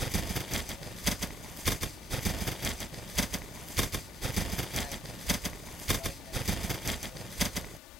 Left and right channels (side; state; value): both; normal; correlation 0.75